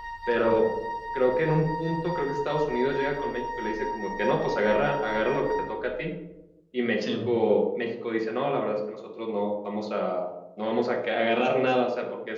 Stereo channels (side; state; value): both; identical; correlation 1.00